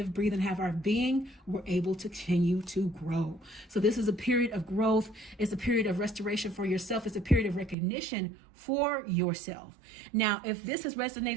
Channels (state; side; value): drops out; left; at 7.8 s